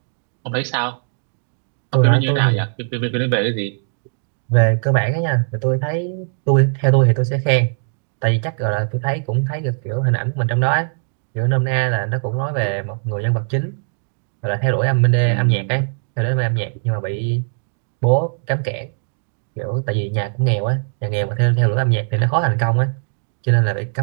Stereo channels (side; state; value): left; silent; digital silence